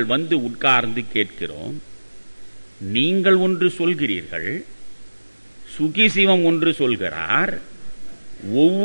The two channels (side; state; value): both; inverted; correlation -1.00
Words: வந்து உட்கார்ந்து கேட்கிறோம். நீங்கள் ஒன்று சொல்கிறீர்கள், சுகிசிவம் ஒன்று சொல்கிறார்.